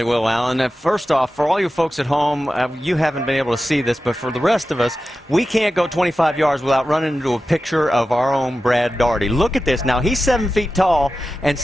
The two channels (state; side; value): normal; both; correlation 0.93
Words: will, Alan. First off, for all you folks at home, you haven't been able to see this, but for the rest of us, we can't go 25 yards without running into a picture of our own Brad Daugherty. Look at this. Now, he's 7 feet tall, and